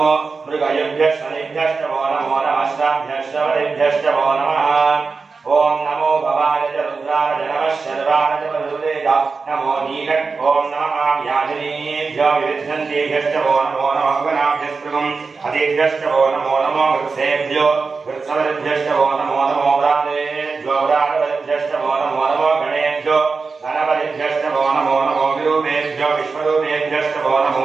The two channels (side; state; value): left; quieter; 4.6 dB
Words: मृगयभ्यश्च वो नमो नमः श्राभ्यश्च वलिभ्यश्च वो नमः ओम नमो भवाय च रुद्राय नमः शर्वाय च वरुदेय नमो नीलक ओम नमः याजनीभ्यो विविद्धन्तेभ्यश्च वो नमो नमः गणाभ्यस्त्रिगं हतेभ्यश्च वो नमो नमो वृक्षेभ्यो वृक्षवलिभ्यश्च वो नमो नमो व्रातेभ्यो व्रातवलिभ्यश्च वो नमो नमो गणेभ्यो गणपतिभ्यश्च वो नमो नमो विरूपेभ्यो विश्वरूपेभ्यश्च वो नमो